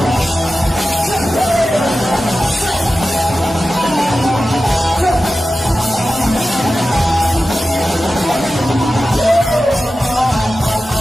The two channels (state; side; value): normal; both; correlation 0.94